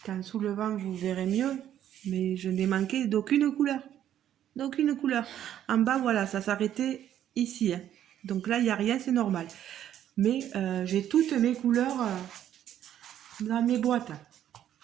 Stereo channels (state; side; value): quieter; left; 10.9 dB